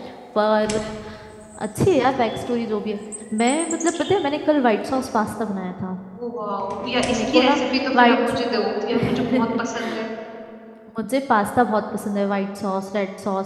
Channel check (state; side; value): identical; both; correlation 1.00